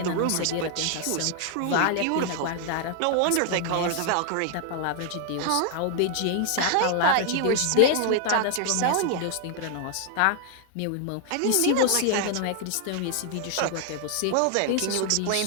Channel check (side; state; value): both; different; correlation 0.00